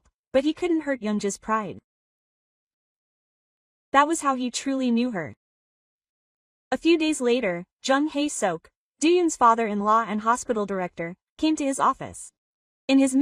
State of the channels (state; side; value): identical; both; correlation 1.00